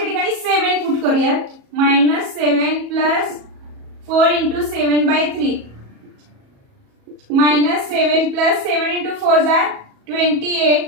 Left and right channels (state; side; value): late; left; 37 ms